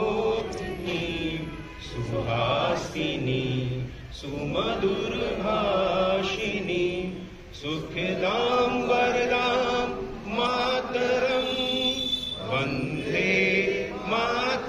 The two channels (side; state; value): both; identical; correlation 1.00